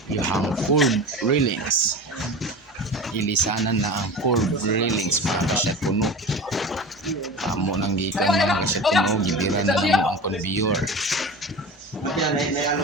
Yung curb railings. Ilisanan na ang curb railings mga kasyat puno. Amo nang gikan mga kasyat puno, gibira na lang ang conveyor.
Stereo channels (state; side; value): normal; both; correlation 0.32